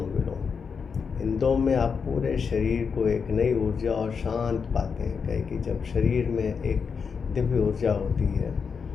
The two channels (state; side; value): quieter; right; 5.9 dB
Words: विलोम, इन दो में आप पूरे शरीर को एक नई ऊर्जा और शांत पाते हैं। कहे कि जब शरीर में एक दिव्य ऊर्जा होती है